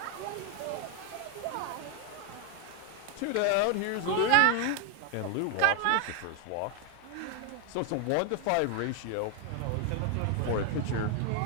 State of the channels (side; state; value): both; different; correlation 0.00